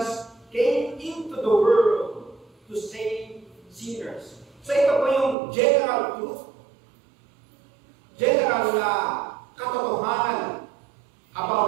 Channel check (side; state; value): left; drops out; at 5.4 s